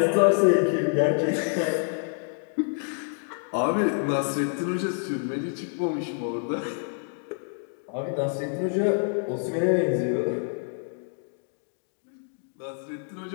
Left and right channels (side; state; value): right; silent; 60 dB below the other